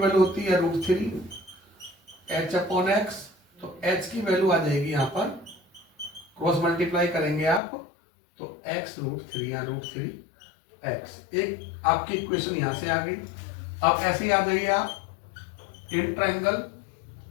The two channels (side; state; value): right; drops out; at 7.6 s